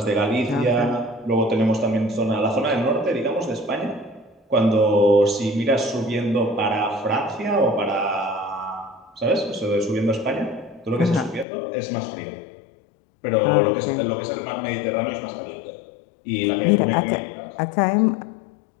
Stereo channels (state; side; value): drops out; right; at 11.5 s